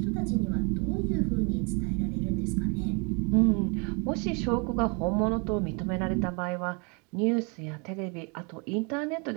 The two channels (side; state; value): left; quieter; 33.5 dB